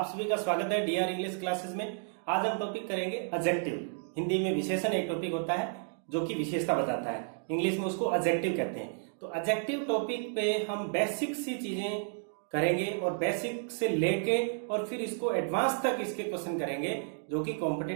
सभी का स्वागत है डीआर इंग्लिश क्लासेस में। आज हम टॉपिक करेंगे एडजेक्टिव। हिंदी में विशेषण एक टॉपिक होता है जो कि विशेषता बताता है, इंग्लिश में उसको एडजेक्टिव कहते हैं। तो एडजेक्टिव टॉपिक पे हम बेसिक सी चीजें करेंगे और बेसिक से लेके और फिर इसको एडवांस तक इसके क्वेश्चन करेंगे जो कि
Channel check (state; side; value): silent; left; digital silence